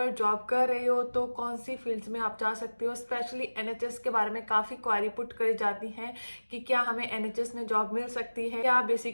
job कर रहे हो तो कौन सी फील्ड्स में आप जा सकते हो। स्पेशली एनएचएस के बारे में काफ़ी क्वारी पुट करी जाती हैं कि क्या हमें एनएचएस में जॉब मिल सकती है, क्या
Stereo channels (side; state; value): both; inverted; correlation -1.00